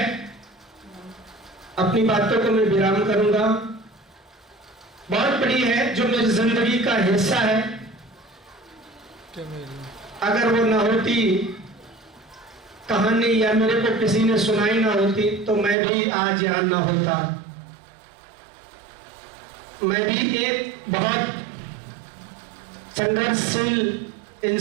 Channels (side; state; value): left; drops out; at 15.8 s